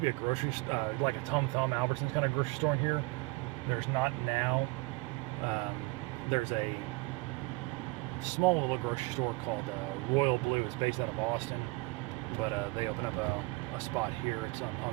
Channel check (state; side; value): quieter; left; 25.0 dB